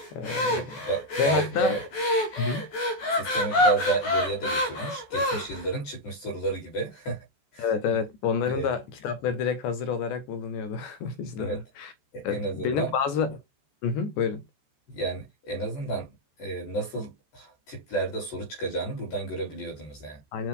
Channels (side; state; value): right; late; 14 ms